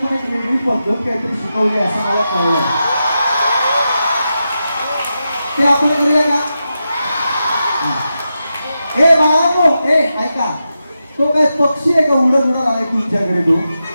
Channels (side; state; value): both; inverted; correlation -0.89